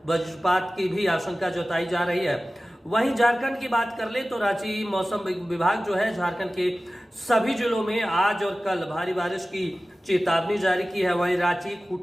वज्रपात की भी आशंका जताई जा रही है। वहीं झारखंड की बात कर ले तो रांची मौसम विभाग जो है झारखंड के सभी जिलों में आज और कल भारी बारिश की चेतावनी जारी की है। वहीं रांची,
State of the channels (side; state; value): both; normal; correlation 0.96